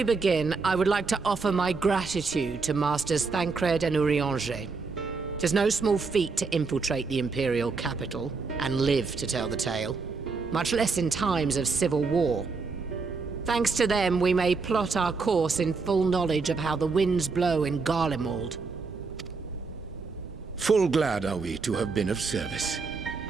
begin, I would like to offer my gratitude to Masters Thancred and Urianger. Tis no small feat to infiltrate the Imperial capital and live to tell the tale, much less in times of civil war. Thanks to them, we may plot our course in full knowledge of how the winds blow in Garlemald. Full glad are we to have been of service.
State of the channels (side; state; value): left; quieter; 4.5 dB